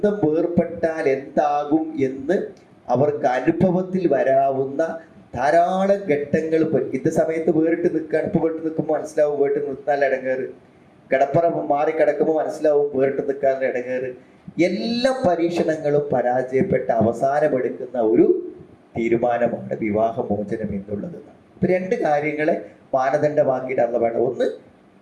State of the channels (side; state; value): both; identical; correlation 1.00